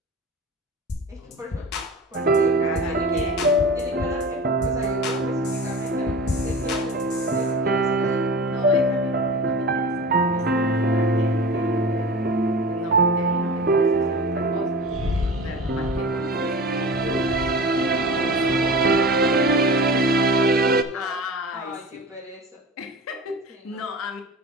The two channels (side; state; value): both; normal; correlation 0.34